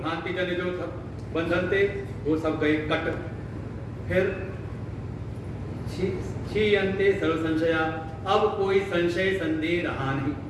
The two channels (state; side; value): identical; both; correlation 1.00